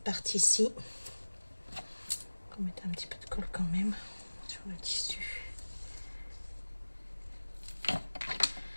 partie-ci. On va mettre un petit peu de colle quand même sur le tissu.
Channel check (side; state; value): both; inverted; correlation -1.00